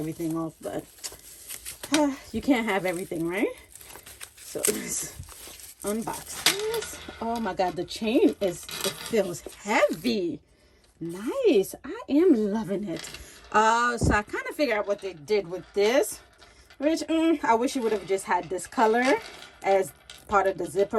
off, but you can't have everything, right? So let's unbox this. Oh my God, the chain it feels heavy. Nice. I am loving it. So I kind of figured out what they did with this, which I wish you would have just had this color as part of the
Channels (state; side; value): identical; both; correlation 1.00